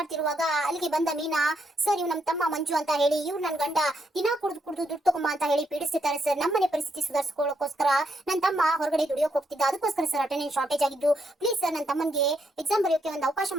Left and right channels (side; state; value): both; normal; correlation 0.78